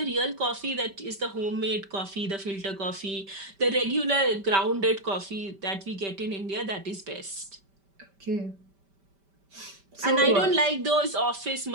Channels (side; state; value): left; late; 5.1 ms